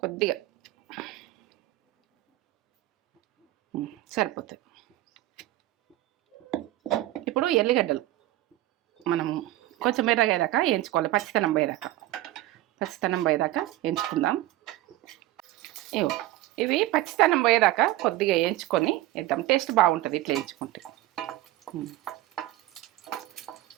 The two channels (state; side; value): quieter; left; 16.1 dB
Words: కొద్దిగా సరిపోతుంది. ఇప్పుడు ఎల్లిగడ్డలు మనము కొంచెం ఎర్రగేదాకా వేయించుకోవాలి, పచ్చితనం పోయేదాకా వేయించుకుందాం. ఇవి పచ్చితనం పోయేదాకా కొద్దిగా వేయించుకొని వేద్దాం, టేస్ట్ బాగుంటుంది ఇట్లా వేయించుకుంటే.